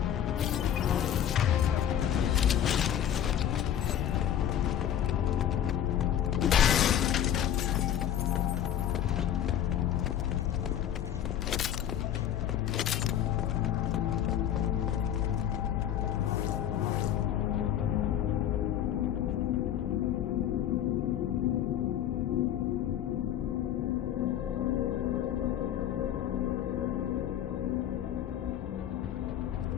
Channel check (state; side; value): quieter; right; 10.5 dB